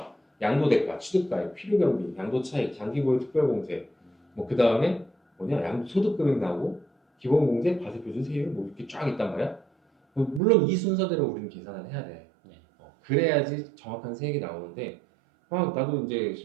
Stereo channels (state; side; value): drops out; left; at 10.4 s